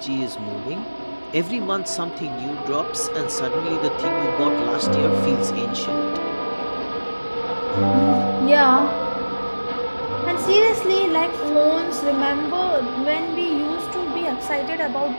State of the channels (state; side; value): inverted; both; correlation -1.00